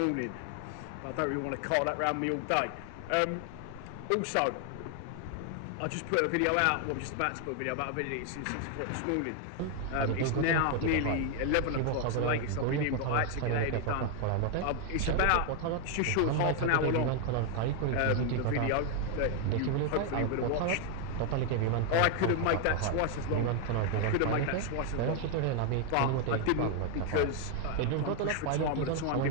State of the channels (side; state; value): both; different; correlation 0.01